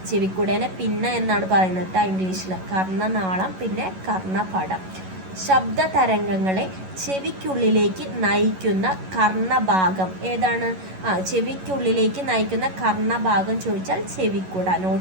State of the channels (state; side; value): late; left; 11 ms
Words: ചെവിക്കുടേനെ പിന്ന എന്നാണ് പറയുന്നത് ഇംഗ്ലീഷിൽ. കർണനാളം, പിന്നെ കർണപടം. ശബ്ദ തരംഗങ്ങളെ ചെവിക്കുള്ളിലേക്ക് നയിക്കുന്ന കർണഭാഗം ഏതാണ്, ചെവിക്കുള്ളിലേക്ക് നയിക്കുന്ന കർണഭാഗം ചോദിച്ചാൽ ചെവിക്കുട.